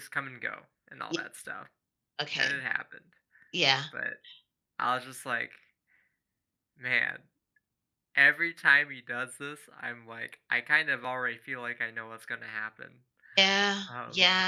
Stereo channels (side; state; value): both; identical; correlation 1.00